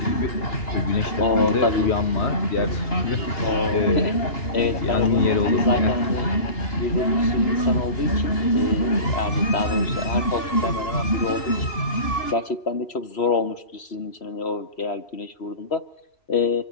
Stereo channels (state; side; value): late; right; 2.9 ms